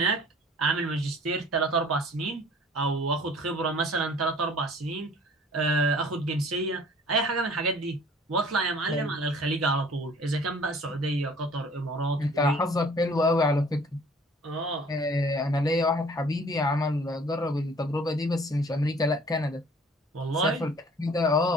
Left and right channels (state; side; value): normal; both; correlation 0.51